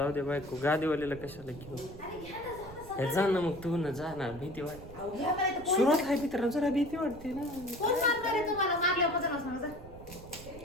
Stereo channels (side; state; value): right; noise; rumble, 16 dB below the sound